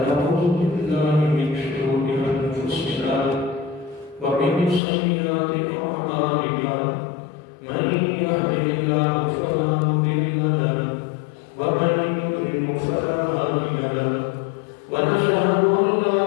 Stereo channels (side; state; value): right; drops out; at 4.8 s